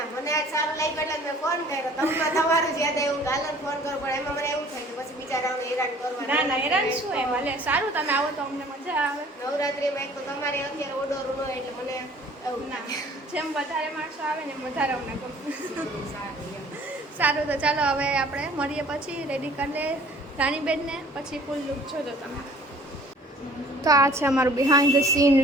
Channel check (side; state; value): both; normal; correlation 0.52